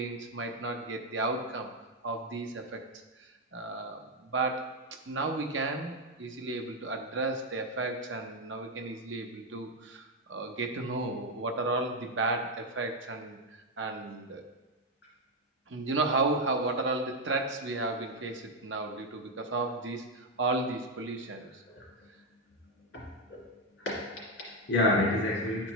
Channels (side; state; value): both; normal; correlation 0.06